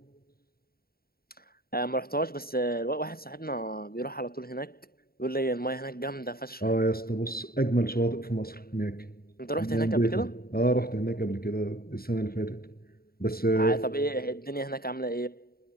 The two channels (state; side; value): late; right; 0.44 ms